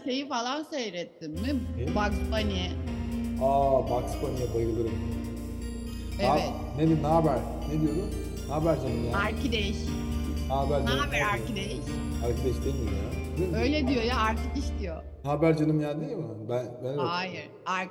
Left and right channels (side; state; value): both; identical; correlation 1.00